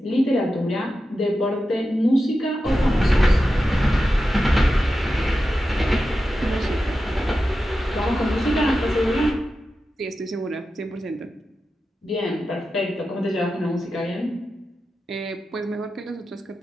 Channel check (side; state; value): both; normal; correlation 0.91